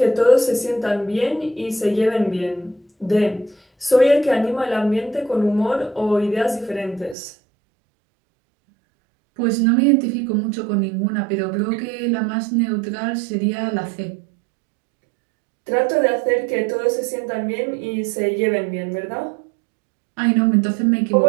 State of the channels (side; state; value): left; drops out; at 7.2 s